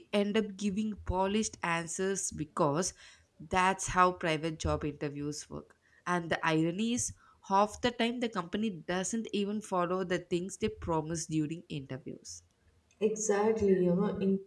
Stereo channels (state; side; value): identical; both; correlation 1.00